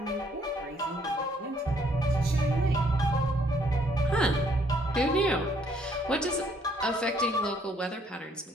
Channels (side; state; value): both; normal; correlation 0.66